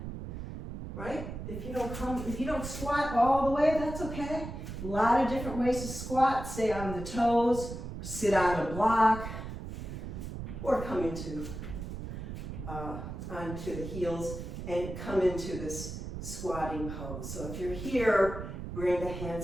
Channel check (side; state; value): right; noise; rumble, 8 dB below the sound